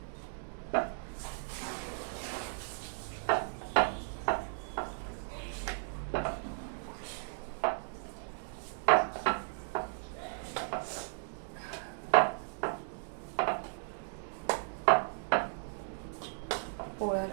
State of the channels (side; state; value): left; silent; digital silence